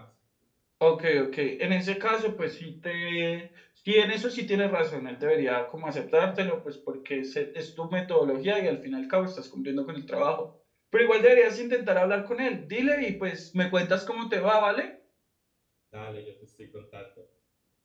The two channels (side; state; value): both; identical; correlation 1.00